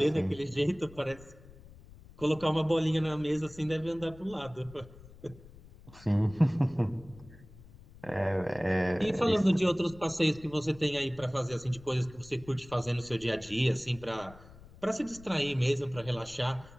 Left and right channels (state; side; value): noise; left; rumble, 20 dB below the sound